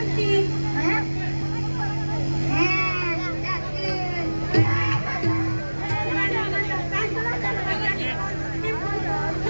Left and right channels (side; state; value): both; inverted; correlation -1.00